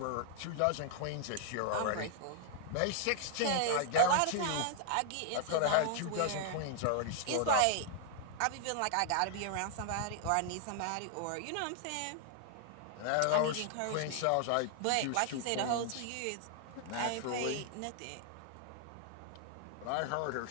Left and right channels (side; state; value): both; different; correlation 0.00